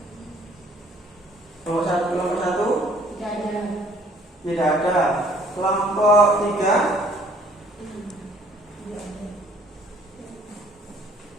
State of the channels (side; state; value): both; normal; correlation 0.58